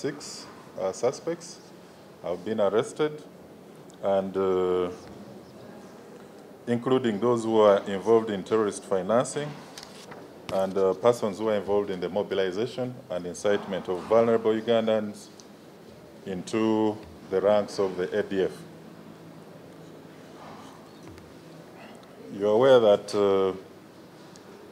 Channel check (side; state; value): both; identical; correlation 1.00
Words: suspects have been arrested, and including those who are involved in terrorist financing and persons who are involved in the mobilization and incitement of vulnerable Ugandans into the ranks of the ADF. You're aware that